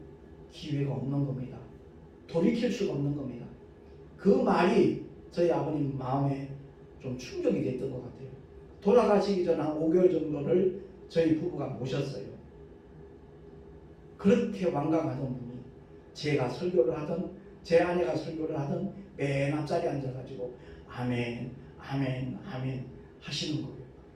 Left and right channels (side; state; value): both; identical; correlation 1.00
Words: 기회가 없는 겁니다. 돌이킬 수가 없는 겁니다. 그 말이 저희 아버님 마음에 좀 충격이 됐던 것 같아요. 돌아가시기 전 한 5개월 정도를 저희 부부가 모셨어요. 그렇게 완강하던 분이 제가 설교를 하든 제 아내가 설교를 하든 맨 앞자리에 앉아가지고 아멘 아멘 아멘 하시는 거예요.